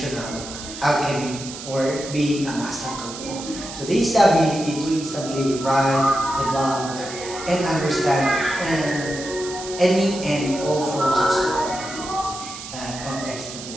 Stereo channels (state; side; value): noise; right; hiss, 11 dB below the sound